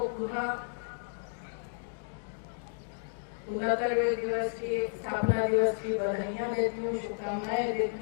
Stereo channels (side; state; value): right; silent; digital silence